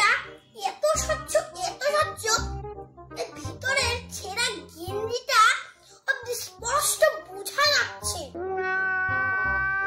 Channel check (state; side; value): identical; both; correlation 1.00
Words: এত স্বচ্ছ এত স্বচ্ছ, এর ভিতরের ছেঁড়া গেঞ্জিটা অতি স্পষ্ট বোঝা যাচ্ছে।